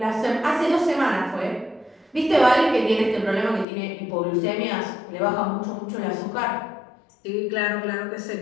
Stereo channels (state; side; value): drops out; right; at 3.7 s